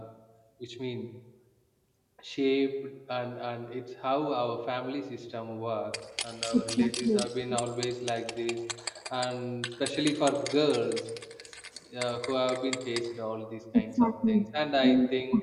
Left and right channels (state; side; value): identical; both; correlation 1.00